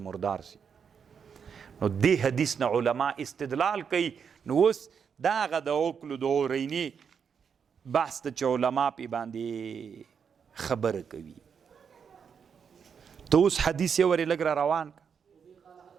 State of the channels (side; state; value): left; quieter; 6.8 dB